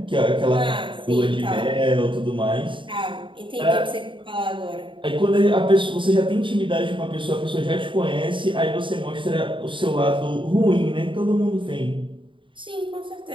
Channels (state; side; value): late; left; 0.24 ms